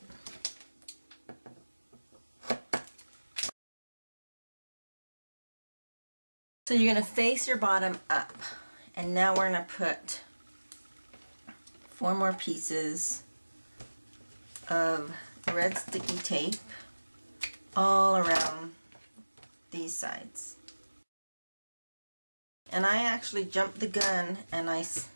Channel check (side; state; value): both; inverted; correlation -1.00